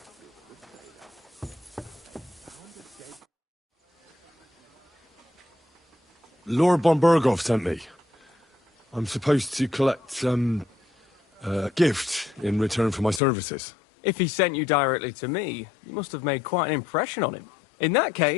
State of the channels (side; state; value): right; drops out; at 13.2 s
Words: Lord von Bergow sent me. I'm supposed to collect, a gift in return for my services. If he sent you directly to me, you must have made quite an impression on him. In that